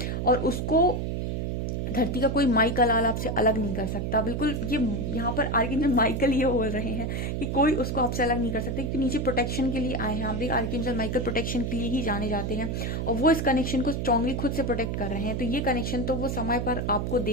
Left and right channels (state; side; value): noise; right; hum, 2 dB below the sound